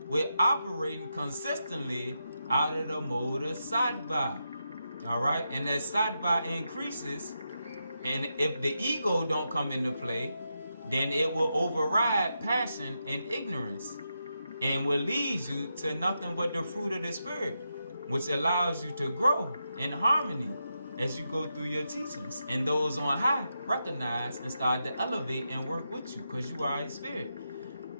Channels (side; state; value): both; inverted; correlation -0.85